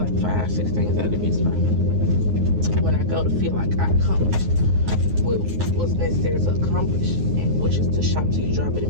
5, 6 things out of the beauty supply when I go to feel like I accomplished what's necessary to accomplish, and which is to shop till you drop it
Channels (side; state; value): left; late; 9.6 ms